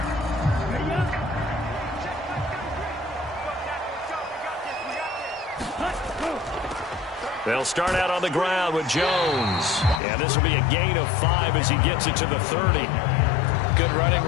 They'll start out on the ground with Jones. And this will be a gain of 5 as he gets it to the 30. Good running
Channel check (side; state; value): right; drops out; at 10.0 s